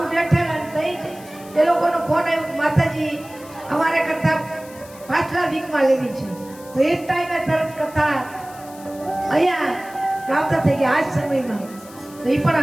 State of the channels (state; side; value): noise; left; hiss, 21 dB below the sound